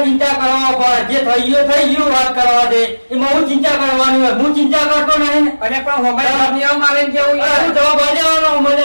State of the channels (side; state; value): both; inverted; correlation -1.00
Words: ચિંતા કરવા પડે, જે થઈ ગયું વાત કરવા દે. એમાં હું ચિંતા કરવાની હોય? હું ચિંતા કરતો નહીં. અને પણ હોમાઈ મારે જેવું હું જવાબ આલવાનો